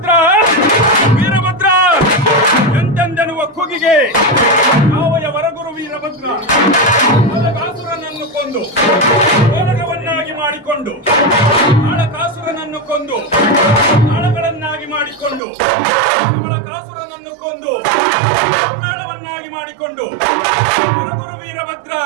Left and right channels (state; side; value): drops out; left; at 15.4 s